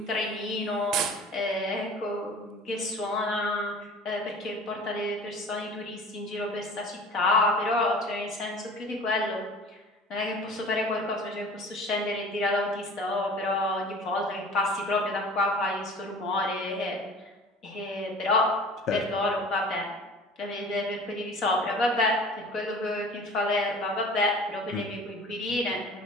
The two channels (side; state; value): both; normal; correlation 0.43